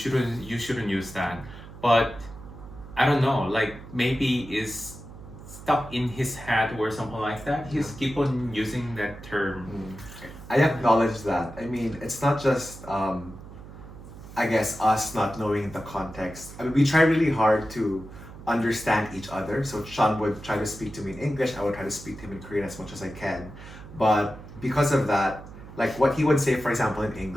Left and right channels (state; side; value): noise; right; hum, 15 dB below the sound